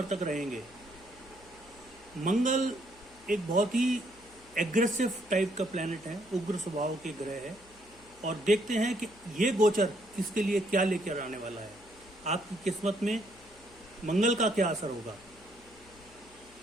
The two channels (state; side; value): noise; left; hum, 26 dB below the sound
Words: तक रहेंगे। मंगल एक बहुत ही एग्रेसिव टाइप का प्लैनेट है, उग्र स्वभाव के ग्रह है, और देखते हैं कि ये गोचर किसके लिए क्या लेकर आने वाला है। आपकी किस्मत में मंगल का क्या असर होगा।